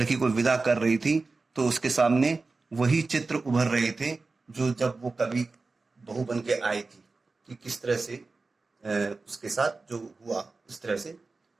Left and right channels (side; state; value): left; quieter; 3.8 dB